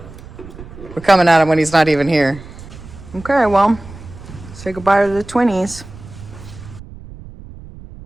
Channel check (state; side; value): noise; right; rumble, 16 dB below the sound